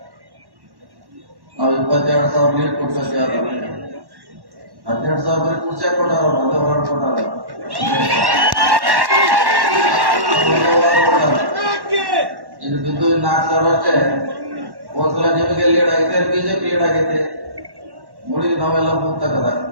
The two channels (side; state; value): left; late; 1.1 ms